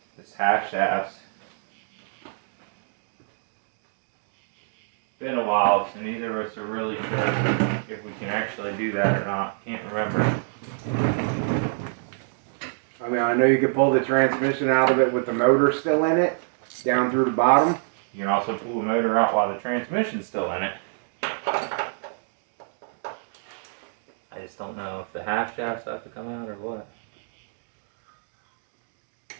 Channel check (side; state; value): left; silent; digital silence